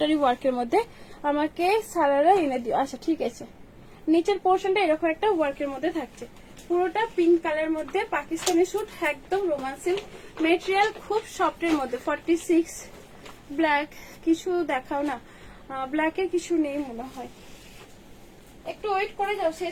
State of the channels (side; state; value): both; identical; correlation 1.00